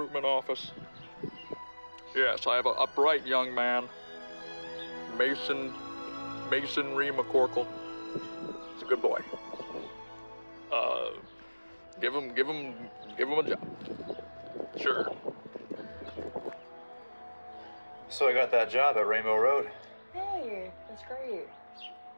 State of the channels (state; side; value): inverted; both; correlation -1.00